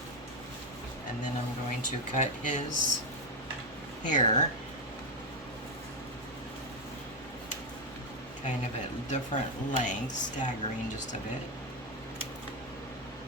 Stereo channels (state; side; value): normal; both; correlation 0.07